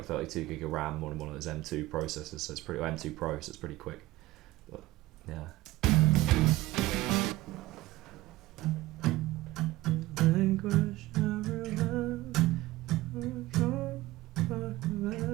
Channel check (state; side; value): quieter; left; 17.8 dB